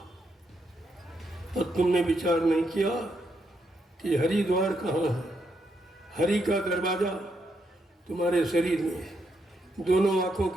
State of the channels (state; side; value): normal; both; correlation 0.79